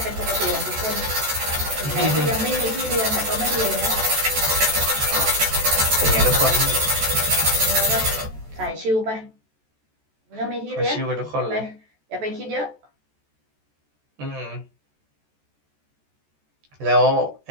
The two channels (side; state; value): left; late; 14 ms